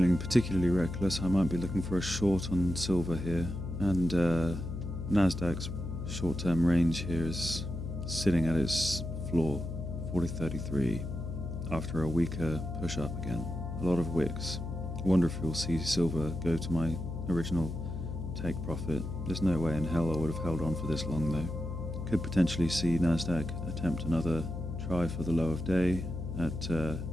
particularly reckless, I might be looking for a short on silver here, and Nasdaq's short-term range here is sitting at its floor, 4033, after a weaker push-up again. A lot of wicks. I wonder if we'll see silver go to my original take profit. There's no way in hell I would have held on for this long though. Could potentially see Nasdaq attempt another try for the low of day at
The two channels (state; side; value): noise; left; hum, 5 dB below the sound